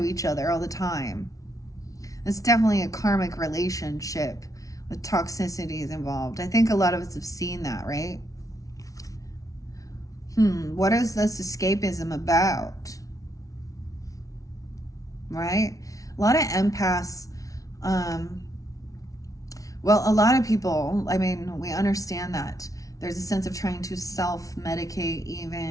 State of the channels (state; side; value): late; right; 0.17 ms